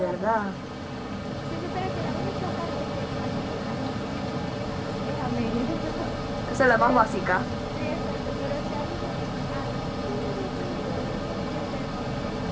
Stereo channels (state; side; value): identical; both; correlation 1.00